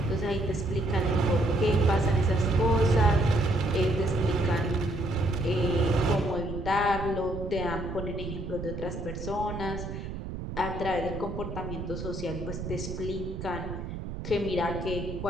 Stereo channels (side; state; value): right; noise; rumble, 7 dB below the sound